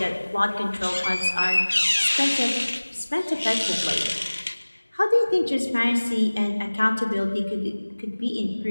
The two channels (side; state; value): both; inverted; correlation -1.00